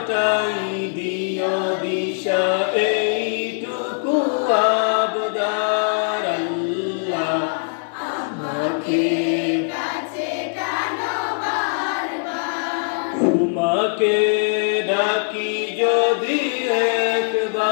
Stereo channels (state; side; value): silent; right; 61 dB below the other